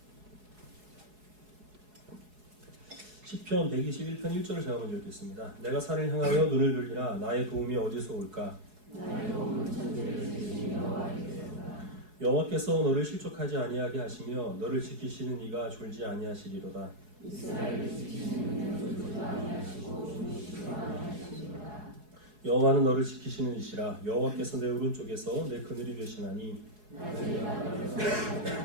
시편 121편 1절을 제가 먼저 읽겠습니다. 내가 산을 향하여 눈을 들리라 나의 도움이 어디서 올까? 여호와께서 너를 실족하지 아니하게 하시며 너를 지키시는 이가 졸지 아니하시리로다. 여호와는 너를 지키시는 이시라. 여호와께서 내 오른쪽에서 내 그늘이 되시나니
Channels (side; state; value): left; late; 4.7 ms